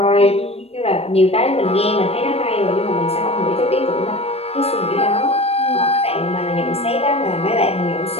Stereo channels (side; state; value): right; late; 0.29 ms